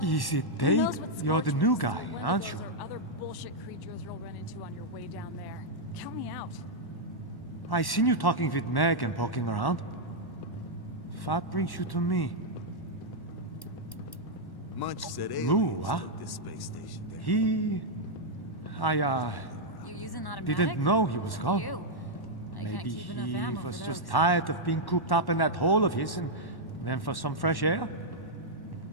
Is it Dave? You're the new guy, aren't you? Or other bullshit creatures you'll run into on your way down there. Count me out. I seen you talking with Meg and poking around. That brings you to me. Munch said Lou, huh? this space station. He... You're using automatic? didn't know he was gone. You. I can't Maybe keep enough he ammo was for just those. tired of being cooped up in that hole of his and went for some fresh air.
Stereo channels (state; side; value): late; right; 1.1 ms